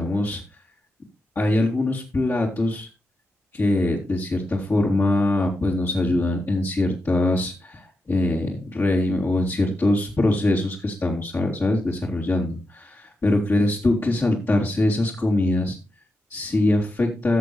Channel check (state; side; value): normal; both; correlation 0.87